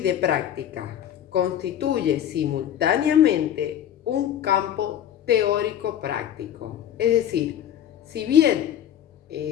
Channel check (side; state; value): right; quieter; 10.4 dB